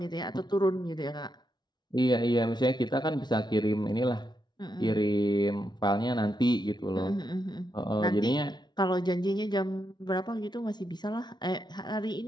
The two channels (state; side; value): late; right; 0.20 ms